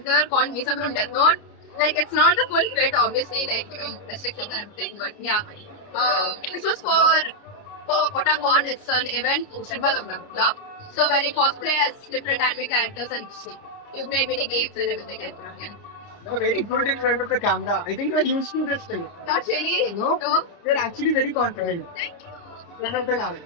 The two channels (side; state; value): right; late; 29 ms